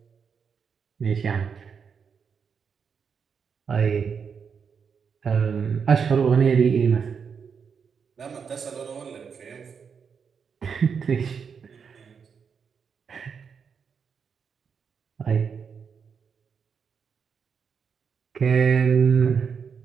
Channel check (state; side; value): quieter; left; 6.4 dB